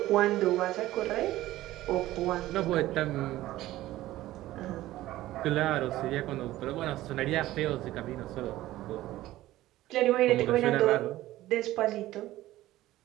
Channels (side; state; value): left; quieter; 15.7 dB